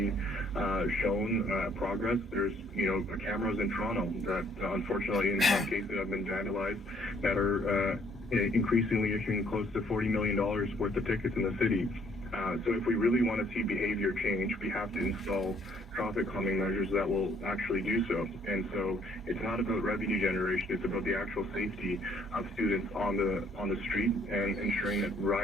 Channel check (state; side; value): normal; both; correlation 0.64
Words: shown progress? There's, cameras in Toronto that unfortunately in some cases have been vandalized that are increasingly issuing close to $40 million worth of tickets in the city. So if we really want to see behavior change, we have to install traffic calming measures that will actually do so. And so it's not about revenue generation, it's about the actual safety of students on the street and ensuring that